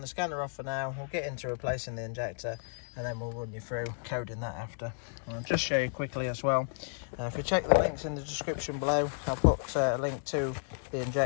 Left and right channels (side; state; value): right; silent; 56 dB below the other